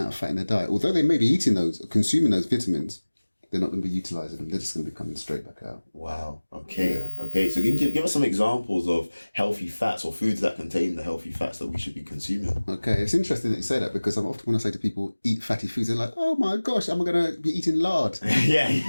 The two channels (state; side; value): inverted; both; correlation -1.00